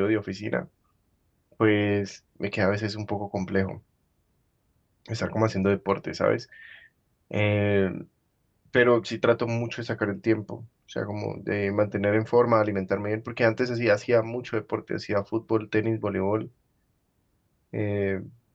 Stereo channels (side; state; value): both; identical; correlation 1.00